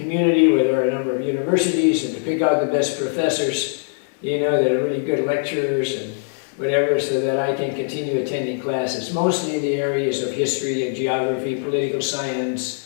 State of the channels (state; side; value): silent; right; digital silence